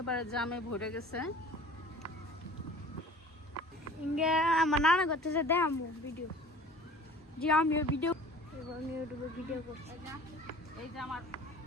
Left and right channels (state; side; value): normal; both; correlation 0.44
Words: জামে ভরে গেছে। ইঙ্গে আমার নানা করতেছে দেখাবো ভিডিও, যে আমিও ভিডিও এবং ইউটিউবে ভিডিও করছি। এই যে আমার